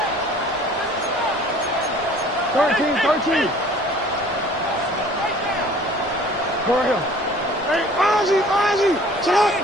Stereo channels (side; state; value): both; normal; correlation 0.50